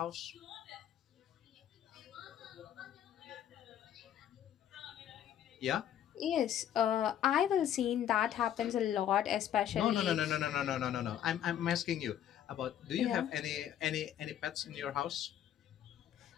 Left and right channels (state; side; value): quieter; right; 10.5 dB